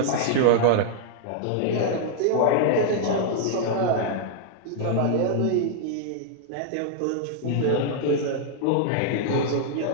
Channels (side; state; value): both; different; correlation -0.01